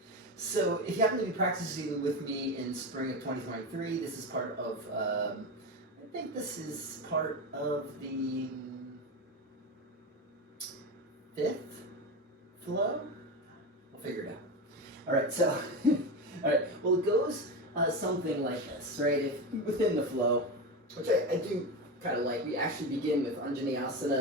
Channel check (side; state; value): both; normal; correlation 0.19